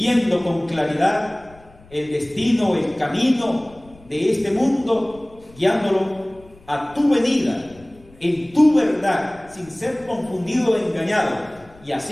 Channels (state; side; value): noise; left; rumble, 25 dB below the sound